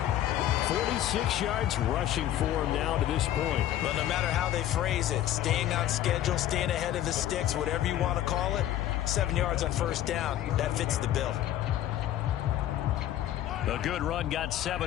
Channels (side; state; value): right; quieter; 12.5 dB